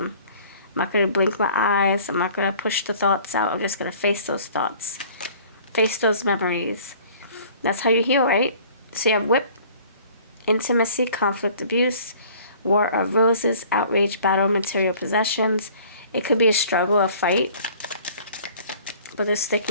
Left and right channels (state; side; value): inverted; both; correlation -0.51